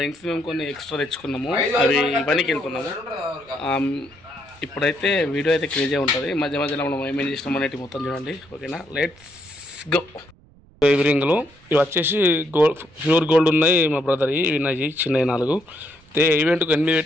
రింగ్స్ మేము కొన్ని ఎక్స్ట్రా తెచ్చుకున్నాము, అవి పనికి వెళ్తున్నాము. ఇప్పుడైతే వీడియో అయితే క్రేజీ ఉంటుంది. మధ్య మధ్యలో మనం ఏమేం చేసినాం అనేది మొత్తం చూడండి. ఓకేనా, లెట్స్ గో. ఇవి రింగులు ఇవి వచ్చేసి గోల్డ్, ప్యూర్ గోల్డ్ ఉన్నాయి మా బ్రదర్. ఇవి ఉన్నాయి చిన్నవి 4. అయితే ఈవెంట్కి 8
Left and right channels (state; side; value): noise; right; rumble, 28 dB below the sound